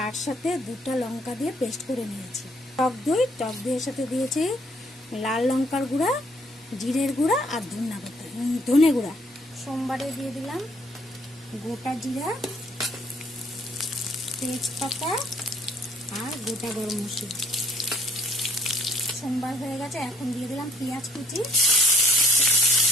সাথে 2টা লঙ্কা দিয়ে পেস্ট করে নিয়েছি। টক দইয়ের সাথে দিয়েছি লাল লঙ্কার গুঁড়া, জিরের গুঁড়া আর ধনে গুঁড়া। সোমবারে দিয়ে দিলাম গোটা জিরা, তেজপাতা আর গোটা গরম মশলা। সোমবার হয়ে গেছে, এখন দিয়ে দিলাম পেঁয়াজ কুচি,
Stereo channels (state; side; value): normal; both; correlation 0.63